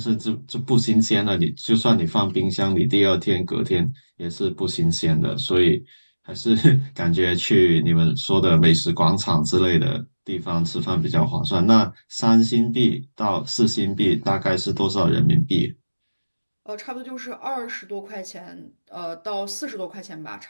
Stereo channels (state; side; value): inverted; both; correlation -1.00